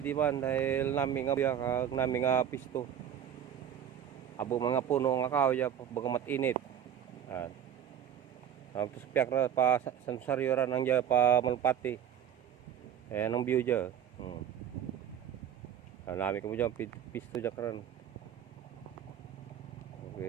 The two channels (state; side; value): quieter; left; 9.4 dB